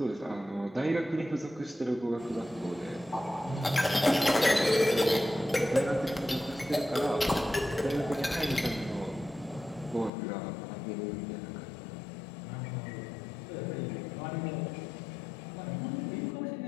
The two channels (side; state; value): right; drops out; at 10.1 s